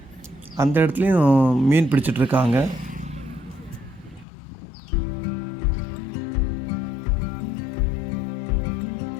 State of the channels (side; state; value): right; drops out; at 4.2 s